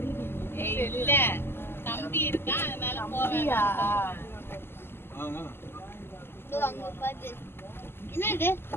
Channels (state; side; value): late; right; 0.11 ms